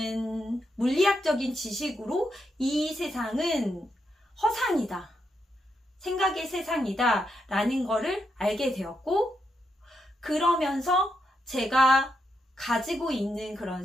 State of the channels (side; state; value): both; normal; correlation 0.82